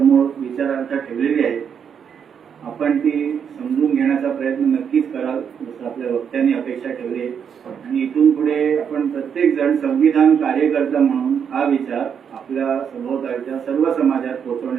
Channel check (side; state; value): left; quieter; 7.5 dB